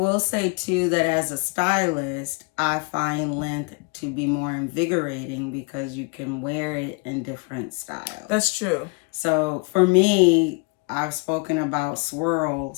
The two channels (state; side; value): quieter; right; 32.0 dB